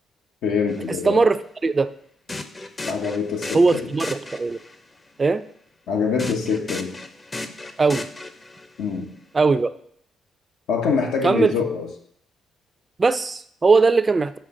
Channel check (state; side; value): normal; both; correlation 0.83